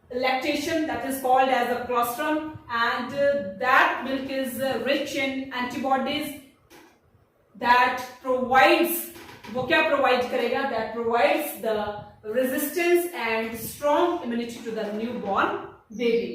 lactation, that is called as a colostrum, and that milk is rich in antibodies that provides, वो क्या provide करेगा? That provides the resistance and strong immunity to the newborn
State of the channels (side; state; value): both; identical; correlation 1.00